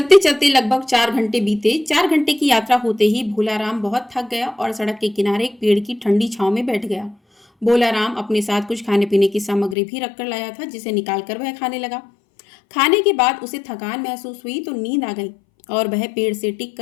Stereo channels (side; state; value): right; drops out; at 9.8 s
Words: चलते लगभग 4 घंटे बीते। 4 घंटे की यात्रा होते ही भोलाराम बहुत थक गया और सड़क के किनारे एक पेड़ की ठंडी छांव में बैठ गया। भोलाराम अपने साथ कुछ खाने पीने की सामग्री भी रख कर लाया था, जिसे निकालकर वह खाने लगा। खाने के बाद उसे थकान महसूस हुई तो नींद आ गई और वह पेड़ से टिक